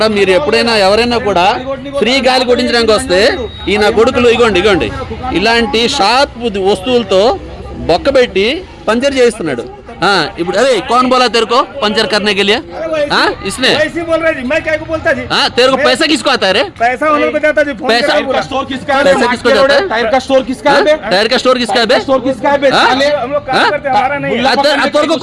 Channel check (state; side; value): identical; both; correlation 1.00